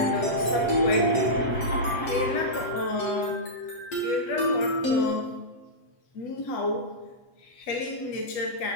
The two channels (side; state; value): right; late; 8.2 ms